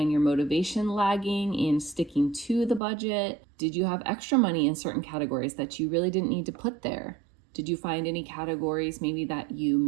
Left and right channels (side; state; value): left; drops out; at 2.8 s